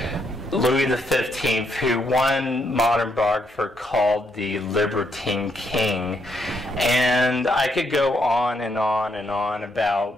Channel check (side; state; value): both; normal; correlation 0.76